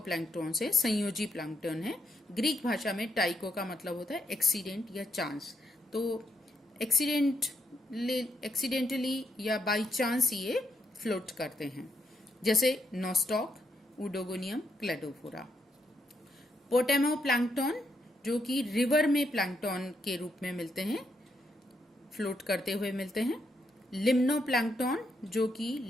है, संयोजी प्लैंक्टॉन है। ग्रीक भाषा में टाइको का मतलब होता है एक्सीडेंट या चांस। तो एक्सीडेंटली या बाई चांस ये फ्लोट करते हैं, जैसे नोस्टॉक, उडोगोनियम, क्लेडोफोरा। पोटेमो प्लैंक्टॉन, जो कि रिवर में प्लैंक्टॉन के रूप में मिलते हैं, फ्लोट करते हुए मिलते हैं। लिम्नो प्लैंक्टॉन, जो कि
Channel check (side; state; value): both; normal; correlation 0.79